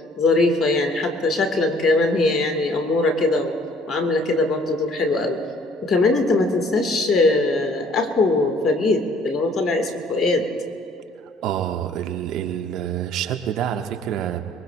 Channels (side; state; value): both; normal; correlation 0.57